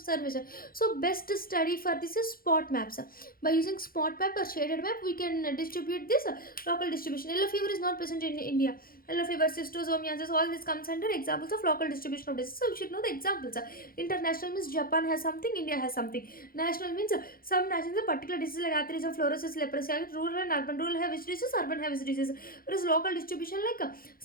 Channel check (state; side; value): late; right; 0.42 ms